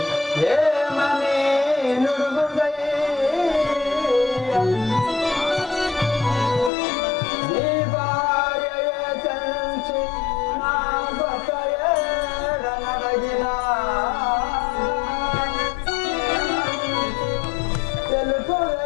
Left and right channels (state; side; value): drops out; right; at 6.7 s